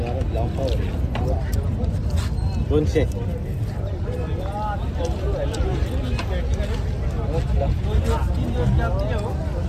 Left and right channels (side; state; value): both; identical; correlation 1.00